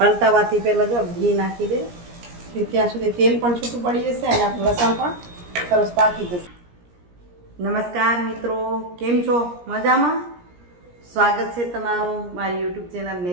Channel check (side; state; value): left; late; 17 ms